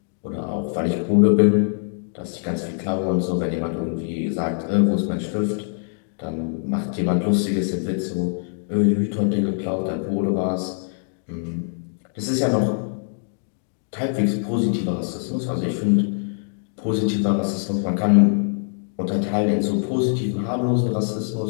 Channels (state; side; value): silent; right; digital silence